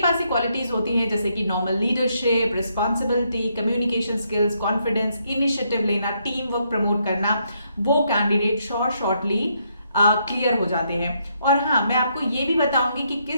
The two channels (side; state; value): both; inverted; correlation -0.75